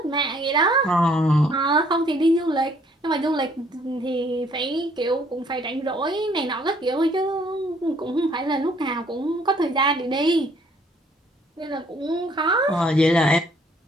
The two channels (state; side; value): normal; both; correlation 0.62